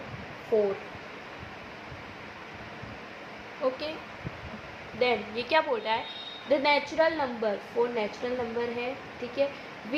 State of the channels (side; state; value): both; identical; correlation 1.00